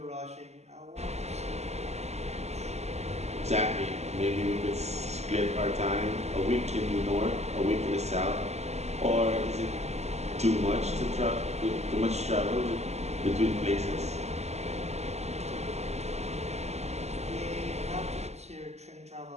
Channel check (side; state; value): left; late; 0.32 ms